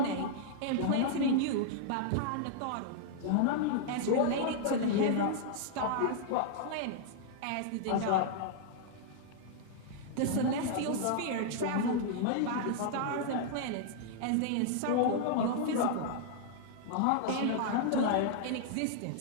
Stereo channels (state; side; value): different; both; correlation -0.01